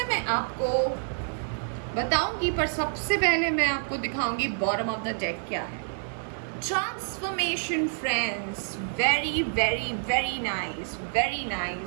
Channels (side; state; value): left; silent; 59 dB below the other